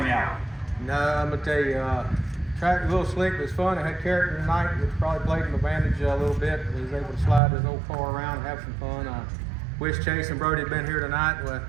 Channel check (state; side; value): drops out; left; at 7.4 s